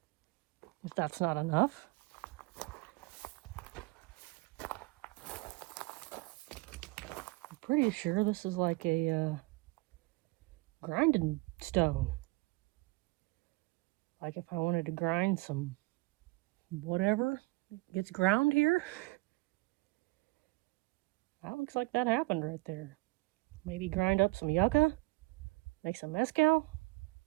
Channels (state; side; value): quieter; left; 24.2 dB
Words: if that's not enough, I'm pretty sure this is like a grinding stone. Like if I wanted to grind some whatever gets ground here. That looks like that happened right there. Maybe grind up some yucca, make some mezcal.